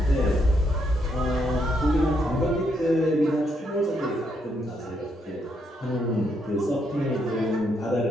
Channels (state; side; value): normal; both; correlation 0.76